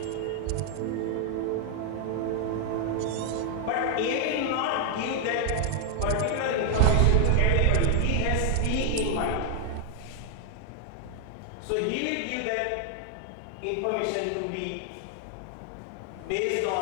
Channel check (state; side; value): different; both; correlation 0.00